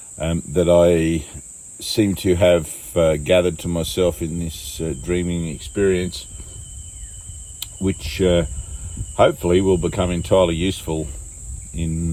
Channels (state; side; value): identical; both; correlation 1.00